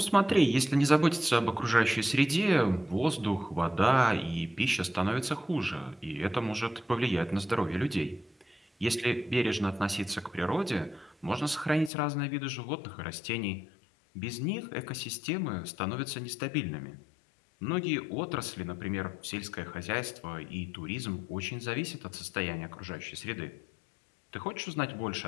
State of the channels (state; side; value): drops out; right; at 11.9 s